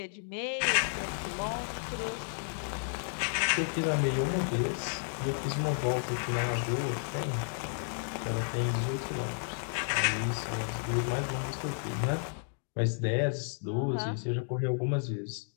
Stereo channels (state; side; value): silent; right; digital silence